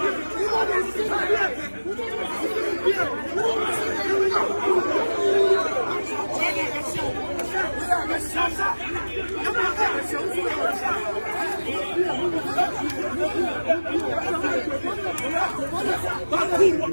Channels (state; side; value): inverted; both; correlation -1.00